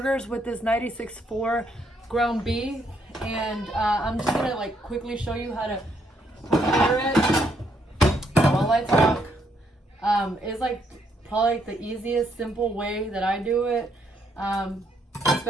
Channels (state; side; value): normal; both; correlation 0.73